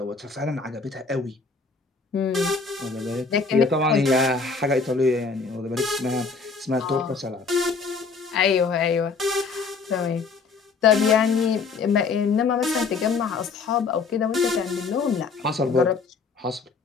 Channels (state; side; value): quieter; right; 4.7 dB